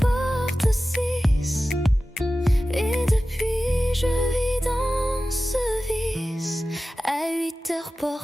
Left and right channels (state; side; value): normal; both; correlation 0.95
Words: 6, et depuis je vis dans ce vice. À 8 heures